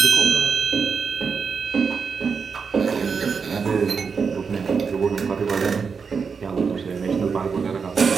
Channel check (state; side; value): quieter; left; 5.7 dB